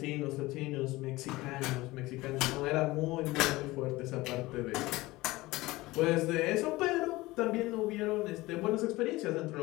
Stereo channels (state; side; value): quieter; right; 19.9 dB